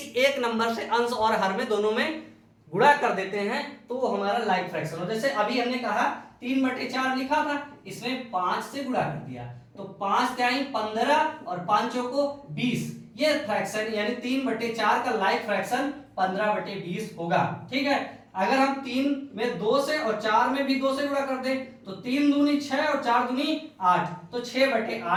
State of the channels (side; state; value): both; identical; correlation 1.00